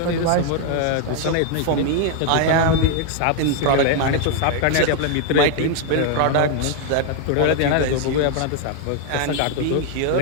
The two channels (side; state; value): both; different; correlation 0.00